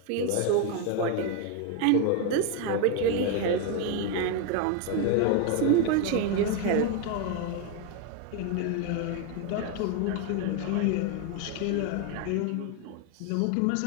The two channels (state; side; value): different; both; correlation 0.01